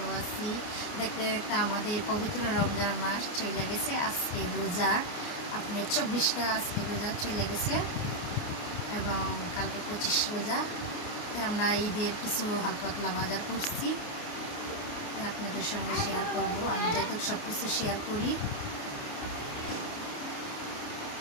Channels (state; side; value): late; right; 29 ms